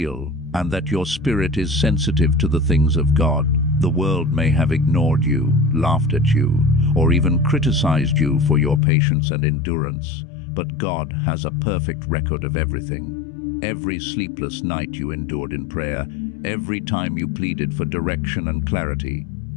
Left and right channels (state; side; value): drops out; right; at 8.8 s